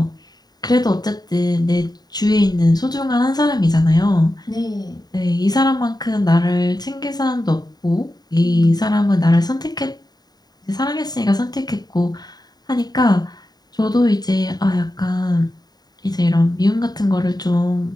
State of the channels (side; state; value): right; late; 0.19 ms